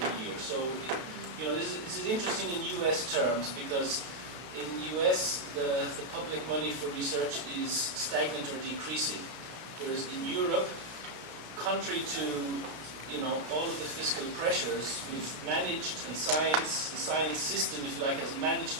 year. So, this is interesting in US terms, because in US, the public money for research is stagnant or decreasing. Whereas in Europe, contrary to all of the fiscal pressures, we've managed, and the science system, if you like, has managed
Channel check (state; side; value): late; left; 32 ms